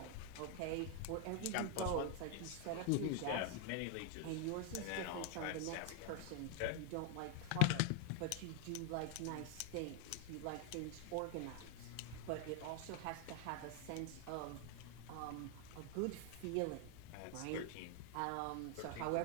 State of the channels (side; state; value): both; different; correlation 0.01